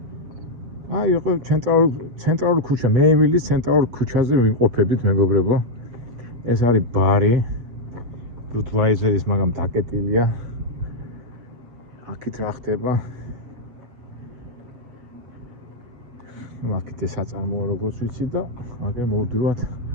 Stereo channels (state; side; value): late; left; 8.0 ms